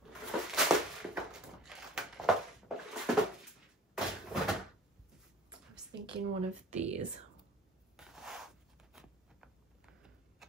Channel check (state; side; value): normal; both; correlation 0.46